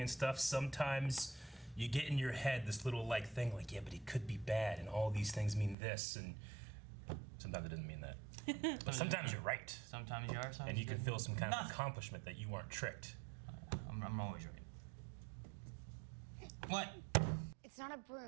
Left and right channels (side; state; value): left; drops out; at 5.8 s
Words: and stuff, sometimes you get in your head this little like thing like, yeah, but he could be bad and all these things mean this, and sometimes it doesn't mean that. But sometimes you're right. Sometimes you are, sometimes And you can didn't. feel some kind of Nothing. accomplishment that you weren't tricked. I'm always right. What? It's not a